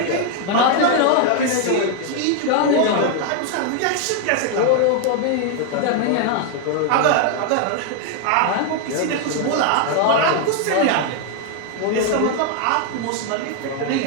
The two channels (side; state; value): both; different; correlation 0.00